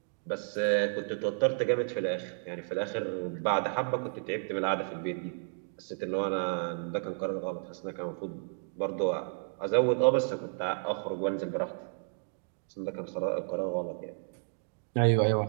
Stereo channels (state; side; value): silent; left; digital silence